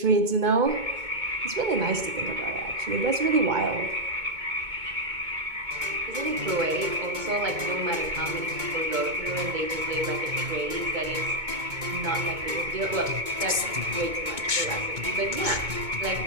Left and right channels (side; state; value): left; late; 2.2 ms